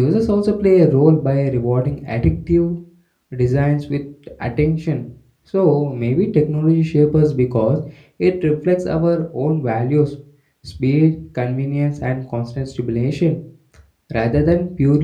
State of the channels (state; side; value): identical; both; correlation 1.00